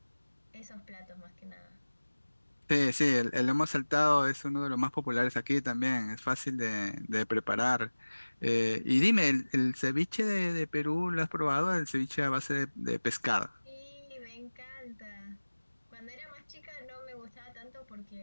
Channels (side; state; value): both; inverted; correlation -1.00